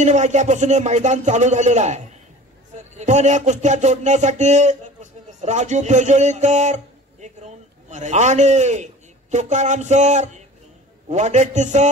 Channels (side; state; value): both; normal; correlation 0.42